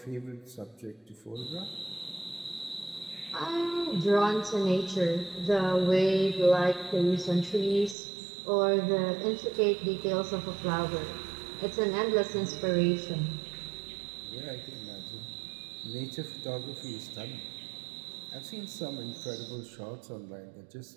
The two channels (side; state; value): left; drops out; at 8.0 s